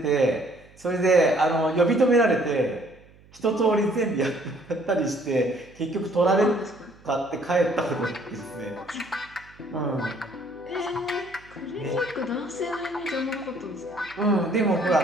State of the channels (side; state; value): right; noise; hum, 26 dB below the sound